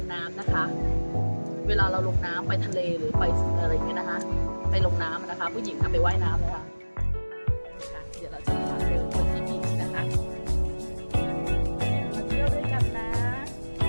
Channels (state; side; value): inverted; both; correlation -1.00